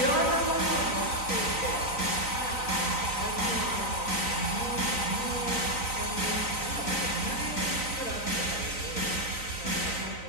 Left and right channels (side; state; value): right; late; 3.9 ms